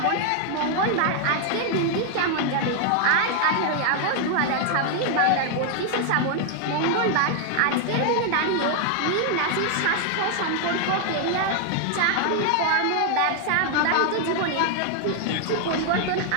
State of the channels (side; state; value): both; different; correlation 0.00